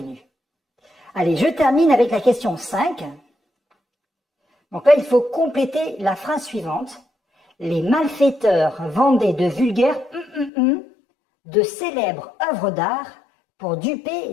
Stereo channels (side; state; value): right; drops out; at 10.5 s